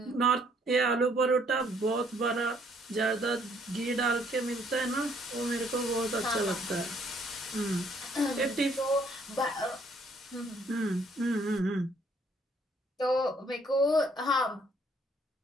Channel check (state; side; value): normal; both; correlation 0.65